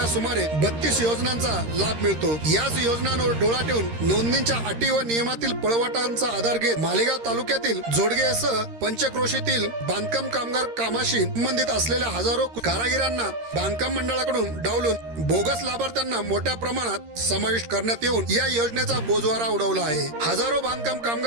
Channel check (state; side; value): late; left; 13 ms